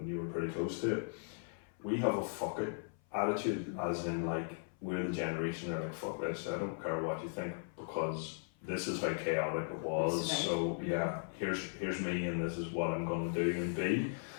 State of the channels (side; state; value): right; silent; 53 dB below the other